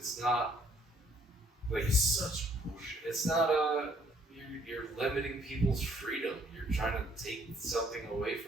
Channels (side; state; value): both; normal; correlation 0.63